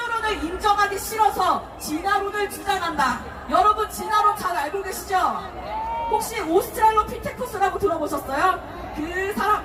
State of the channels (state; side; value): identical; both; correlation 1.00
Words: 인정하기 싫어서 진화론을 주장한다. 여러분 진화론 잘 알고 계시죠? 혹시 오스트랄로피테쿠스라고 들어보셨어요? 그